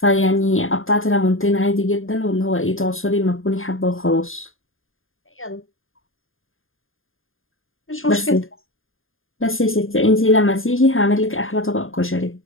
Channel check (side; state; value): right; late; 0.59 ms